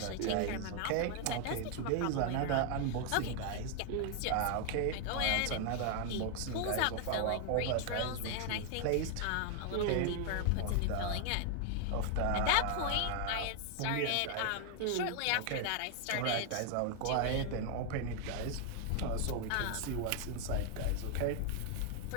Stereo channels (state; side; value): different; both; correlation 0.00